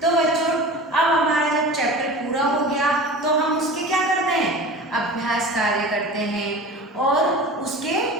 तो बच्चों, अब हमारा जब चैप्टर पूरा हो गया तो हम उसके क्या करते हैं? अभ्यास कार्य करते हैं और उसके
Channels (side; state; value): both; normal; correlation 0.35